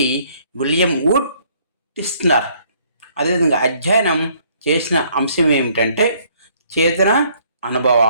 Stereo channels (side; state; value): both; inverted; correlation -0.63